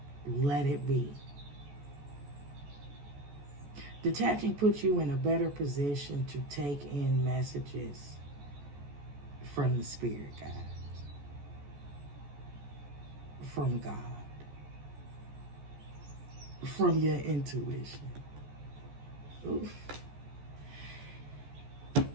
let it be. Detaching puts you in a better position to take in messages from the spirit guides, from God, from your intuition. Oof.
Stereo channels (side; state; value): left; late; 14 ms